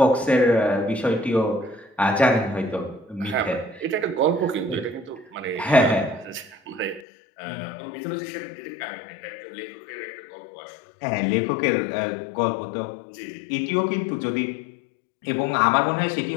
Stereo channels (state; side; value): drops out; right; at 7.1 s